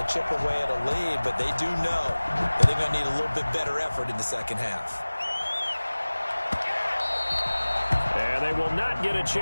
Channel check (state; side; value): inverted; both; correlation -1.00